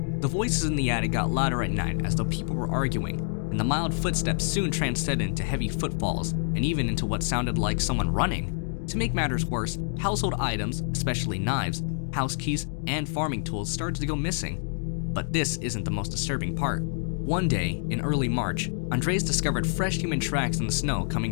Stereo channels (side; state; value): right; silent; digital silence